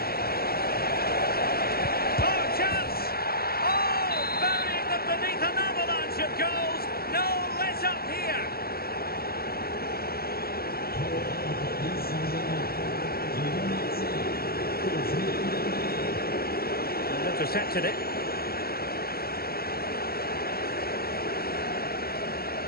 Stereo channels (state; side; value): late; right; 0.45 ms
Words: Oh, chance! Oh, burying them beneath an avalanche of goals. No let up here. Intercepted it.